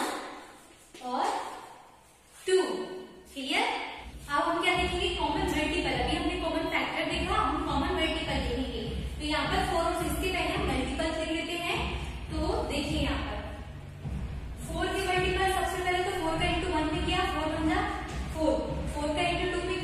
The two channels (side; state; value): both; identical; correlation 1.00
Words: और 2। क्लियर? अब हम क्या देखेंगे, कॉमन मल्टीपल। अभी हमने कॉमन फैक्टर देखा, हम कॉमन मल्टीपल देखेंगे। तो यहाँ पर 4 और 6